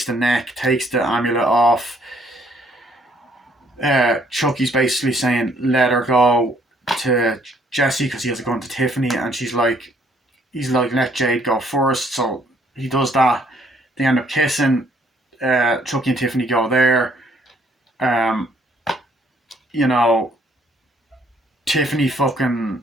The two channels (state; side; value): normal; both; correlation 0.65